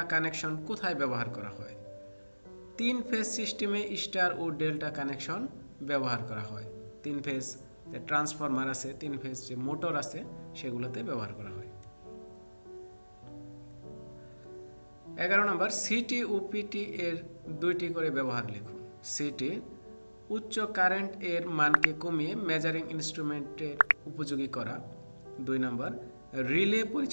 কানেকশন কোথায় ব্যবহার করা হয়? 3 ফেজ সিস্টেমে স্টার ও ডেল্টা কানেকশন ব্যবহার করা হয়। 3 ফেজ যে ট্রান্সফরমার আছে, 3 ফেজ যে মোটর আছে, সেগুলোতে ব্যবহার করা হয়। 11 নম্বর, সিটি ও পিটি এর 2টি করে ব্যবহার লিখুন। সিটি, উচ্চ কারেন্ট এর মানকে কমিয়ে মেজারিং ইনস্ট্রুমেন্টের উপযোগী করা। 2 নম্বর, রিলে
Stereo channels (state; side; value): inverted; both; correlation -1.00